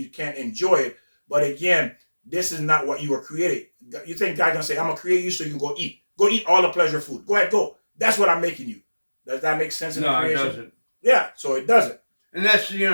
can't enjoy it, but again, this is not what you were created. You think God's gonna say, I'm gonna create you so you can go eat. Go eat all the pleasure food. Go ahead, go. That's what I'm making you. Does that make sense in the No, it creation? doesn't. Yeah, so it doesn't. And that's,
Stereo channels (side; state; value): both; inverted; correlation -1.00